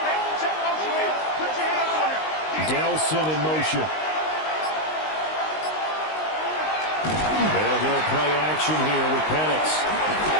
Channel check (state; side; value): late; right; 19 ms